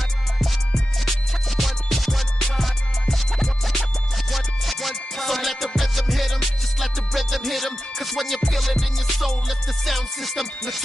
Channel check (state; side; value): normal; both; correlation 0.93